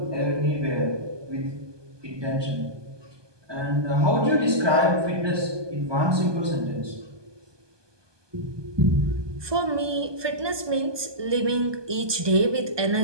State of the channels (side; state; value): left; late; 1.2 ms